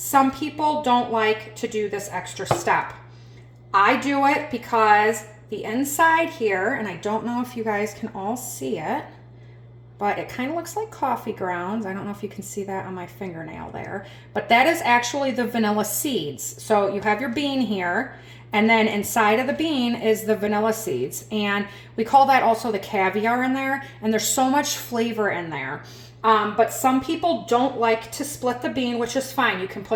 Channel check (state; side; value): identical; both; correlation 1.00